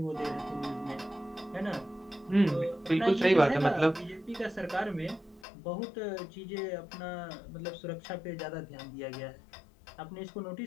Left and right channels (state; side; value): drops out; right; at 5.5 s